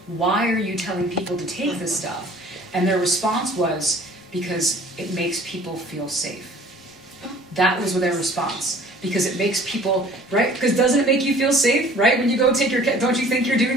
Why are you telling people to take this stuff? And their response was, because it makes people feel safe. That was their response. Because it makes people, right? Because doesn't it make you feel safe, right? When you go take don't you think you're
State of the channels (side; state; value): both; normal; correlation 0.50